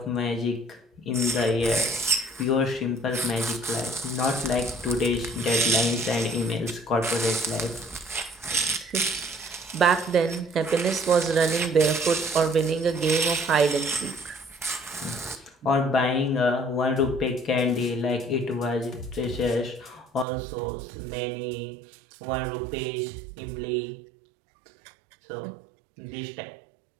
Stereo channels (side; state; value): left; drops out; at 20.2 s